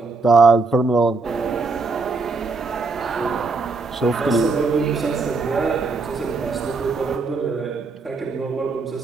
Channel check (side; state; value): left; quieter; 4.0 dB